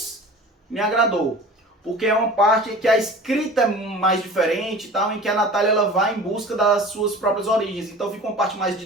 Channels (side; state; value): both; normal; correlation 0.40